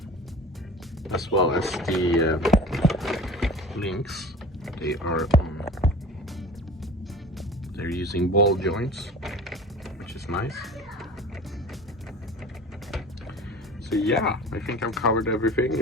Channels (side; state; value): both; normal; correlation 0.39